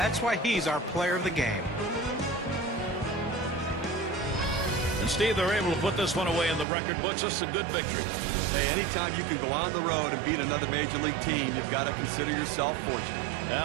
why he's our player of the game. And Steve, they're able to put this one away in the record books. This is a good victory. Hey, anytime you can go on the road and beat another Major League team, you've got to consider yourself fortunate.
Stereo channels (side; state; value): left; drops out; at 6.7 s